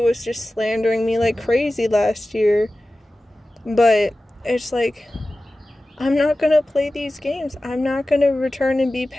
was just slandering me like crazy last year. But it's like, I'm not going to play these games. I'm not going to return and be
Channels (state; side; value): normal; both; correlation 0.95